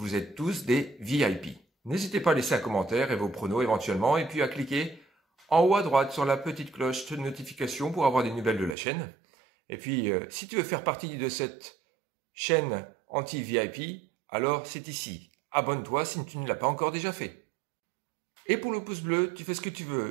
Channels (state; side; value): drops out; left; at 8.8 s